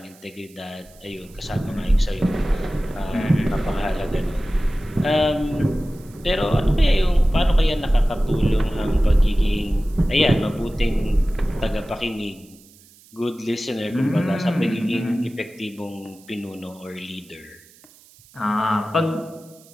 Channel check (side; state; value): right; noise; hiss, 26 dB below the sound